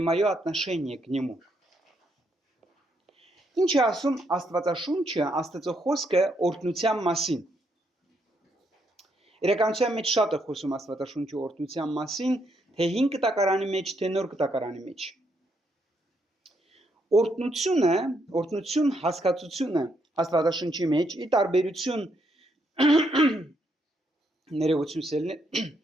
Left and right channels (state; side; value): normal; both; correlation 0.75